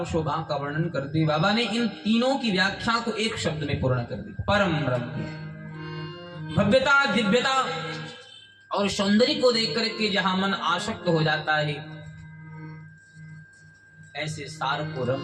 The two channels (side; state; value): both; identical; correlation 1.00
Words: शोभा का वर्णन करते बाबा ने इन तीनों की व्याख्या को एक शब्द में पूर्ण कर दी। परम रम्य भव्यता, दिव्यता और सौंदर्य को देख करके जहां मन आसक्त हो जाता है ऐसे सार को